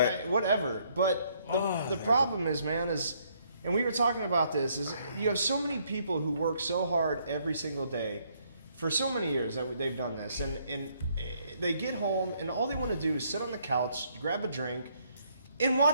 but- whatever. But the problem is, man, and we were talking about this, is you have so many people who work so hard every single day for so many years that they've done this, and they get home and all they want to do is sit on the couch, grab a drink, and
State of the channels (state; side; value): inverted; both; correlation -0.69